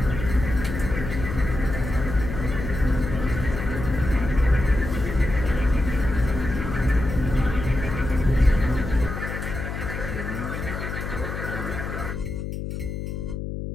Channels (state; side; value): noise; left; hum, 5 dB below the sound